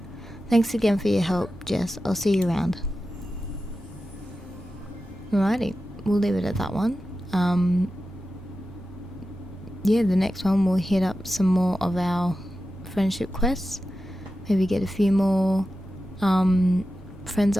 Thanks again for your help, Jess. I'll see you around. Alrighty, we'll leave it at that one. Yeah, the next one we'll hit up some more of our friendship quests. Maybe get a few more friends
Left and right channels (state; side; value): normal; both; correlation 0.92